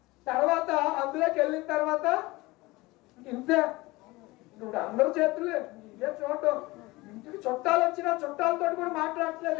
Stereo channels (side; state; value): right; quieter; 21.4 dB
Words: తర్వాత అందులోకి వెళ్ళిన తర్వాత ఇంతే. ఇప్పుడు అందరి చేతులు ఇదే చూడటం. ఇంటికి చుట్టాలు వచ్చినా చుట్టాలతో కూడా మాట్లాడట్లేదు,